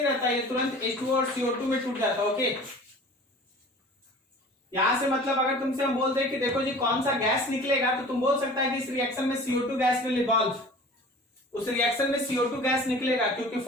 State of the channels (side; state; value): both; normal; correlation 0.43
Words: रहता, ये तुरंत H2 और CO2 में टूट जाता, ओके। यहां से मतलब अगर तुमसे हम बोलते हैं कि देखो जी कौन सा गैस निकलेगा, तो तुम बोल सकता है कि इस रिएक्शन में CO2 गैस विल इवॉल्व, उस रिएक्शन में CO2 गैस निकलेगा, क्योंकि